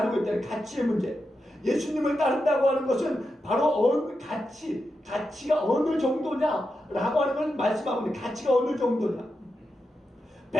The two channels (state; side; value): normal; both; correlation 0.88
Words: 있다는 가치의 문제. 예수님을 따른다고 하는 것은 바로 가치가 어느 정도냐라고 하는 걸 말씀하고 있는 가치가 어느 정도냐.